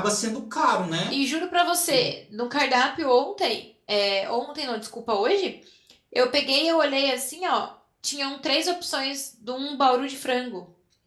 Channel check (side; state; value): both; identical; correlation 1.00